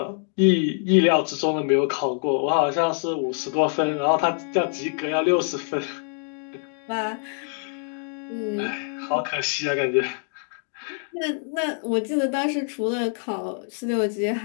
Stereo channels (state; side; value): silent; right; 55 dB below the other